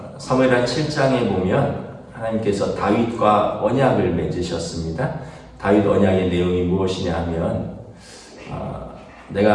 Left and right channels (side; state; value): both; identical; correlation 1.00